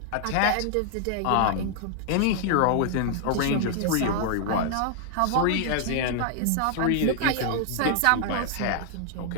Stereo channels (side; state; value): both; different; correlation 0.00